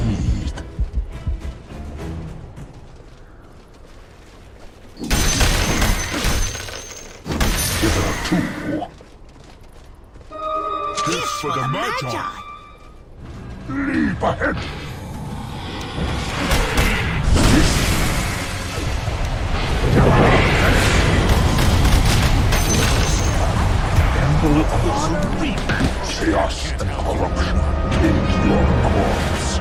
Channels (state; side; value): identical; both; correlation 1.00